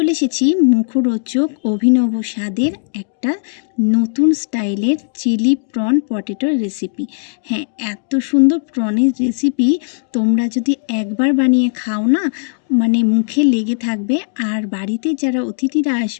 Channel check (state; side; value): silent; right; digital silence